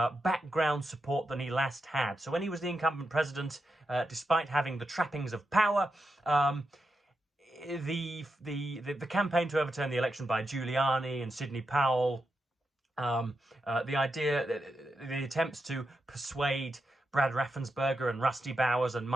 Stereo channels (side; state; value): both; normal; correlation 0.87